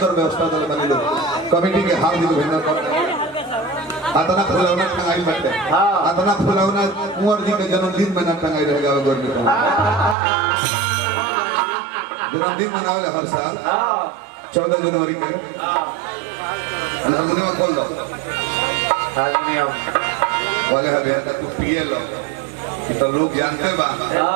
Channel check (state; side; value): drops out; left; at 10.2 s